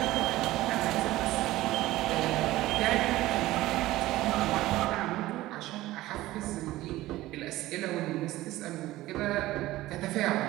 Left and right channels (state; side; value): quieter; left; 16.8 dB